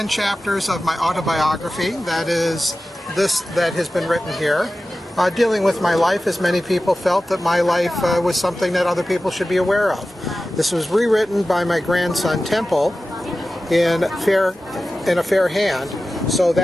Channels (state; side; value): normal; both; correlation 0.95